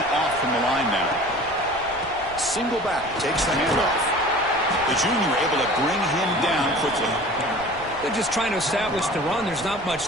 off from the line now. Single back, takes the handoff. The junior able to bring him down quickly. They're just trying to establish the run. There's not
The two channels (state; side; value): noise; right; rumble, 19 dB below the sound